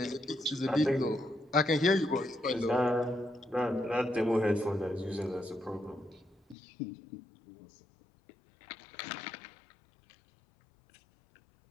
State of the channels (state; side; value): drops out; right; at 6.6 s